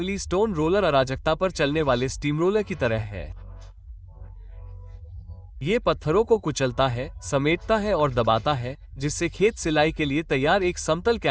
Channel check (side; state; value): both; identical; correlation 1.00